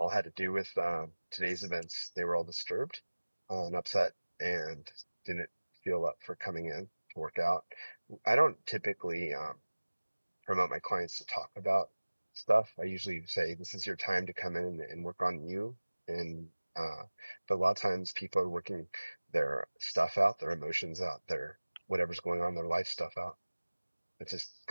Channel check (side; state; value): both; inverted; correlation -1.00